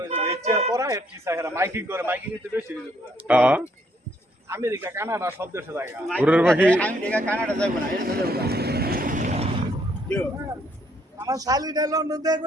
হইছে রেচার করা এর কি সাহেরা মাইকিং করে মাইকিং এতে বেশি দিবে হ্যাঁ আমেরিকা কানাডা সব দেশে জায়গা ঘুরের পাখি আমি দেখা কানাডা যাইব না এটা যাইব না আমার শালিটা লন্ডন দেখ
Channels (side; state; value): both; normal; correlation 0.69